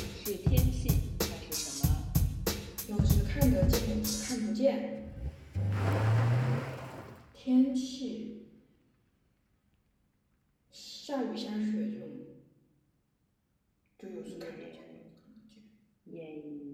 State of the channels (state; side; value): identical; both; correlation 1.00